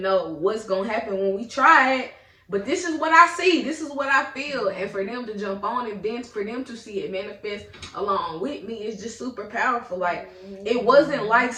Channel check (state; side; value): identical; both; correlation 1.00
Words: know what's gonna happen when we try it. But this is what I see. This is what I feel. And for them to jump on it, then for them to see it manifest along with me, is just super powerful. Like, it wasn't like